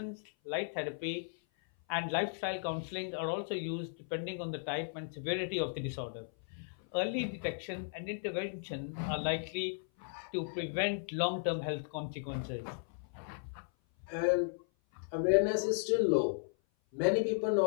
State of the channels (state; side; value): silent; right; 54 dB below the other